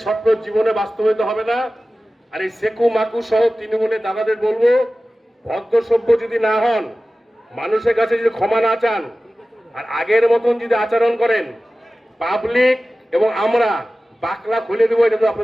স্বপ্ন জীবনে বাস্তবায়িত হবে না। আর এই সেকু মাকু সহ তৃণমূলের দাদাদের বলবো, ভদ্র সভ্য যদি না হন, মানুষের কাছে যদি ক্ষমা না চান, আর আগের মতন যদি আচরণ করেন, পাবলিক এবং আমরা বাকলা খুলে দেবো, এটা তো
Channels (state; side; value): normal; both; correlation 0.96